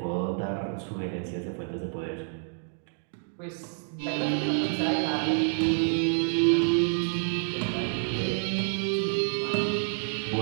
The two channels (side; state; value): left; silent; digital silence